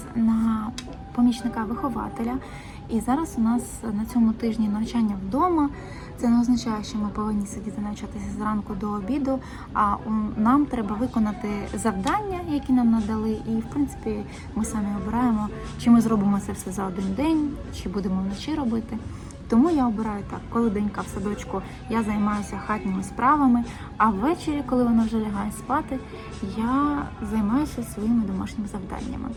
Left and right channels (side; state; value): both; identical; correlation 1.00